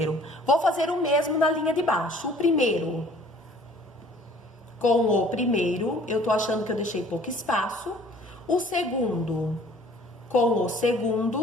Vou fazer o mesmo na linha de baixo. O primeiro com o primeiro, eu tô achando que eu deixei pouco espaço. O segundo com o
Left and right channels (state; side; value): normal; both; correlation 0.53